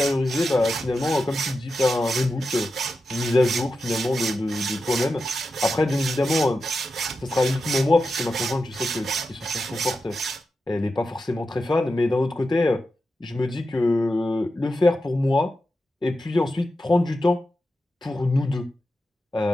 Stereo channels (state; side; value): normal; both; correlation 0.90